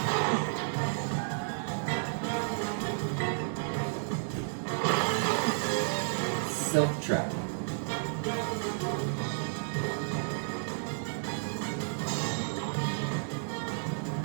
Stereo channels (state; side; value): silent; left; digital silence